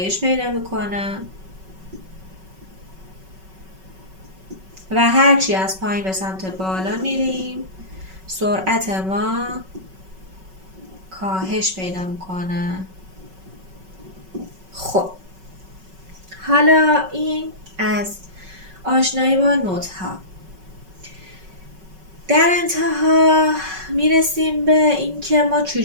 پیدا میکنه و هرچی از پایین به سمت بالا میریم سرعت ما کاهش پیدا میکنه. خب حالا این از آشنایی با نوت ها. در انتها میرسیم به اینکه ما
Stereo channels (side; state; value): left; late; 5.3 ms